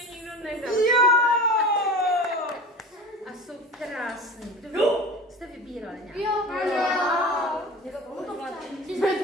nikdo nedal. Jo! A krásný. Kdo jste vybírali nějak? Jo.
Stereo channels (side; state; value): both; normal; correlation 0.34